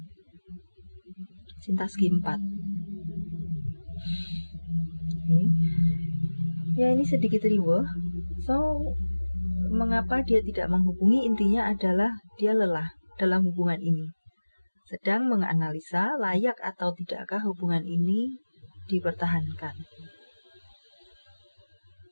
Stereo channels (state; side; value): inverted; both; correlation -1.00